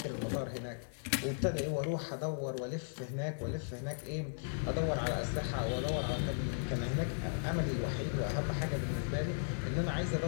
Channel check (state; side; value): silent; right; 53 dB below the other